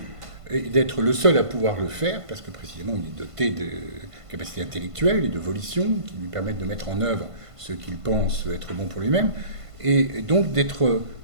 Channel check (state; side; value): late; left; 1.5 ms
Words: et d'être le seul à pouvoir le faire, parce que précisément il est doté de capacités intellectuelles et de volition qui lui permettent de mettre en œuvre ce qu'il pense être bon pour lui-même, et donc